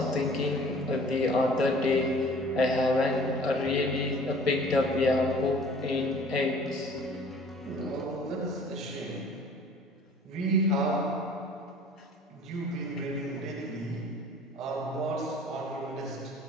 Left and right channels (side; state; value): both; normal; correlation 0.49